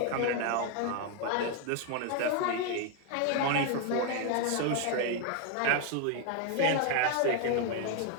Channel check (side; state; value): both; different; correlation 0.01